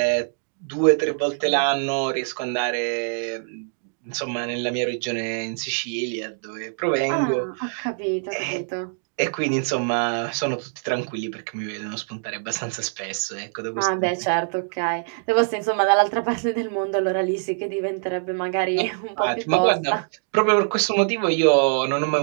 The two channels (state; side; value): silent; left; 63 dB below the other